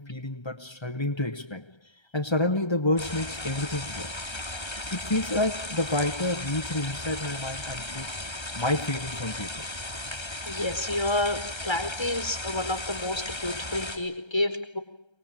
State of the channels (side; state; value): right; late; 1.3 ms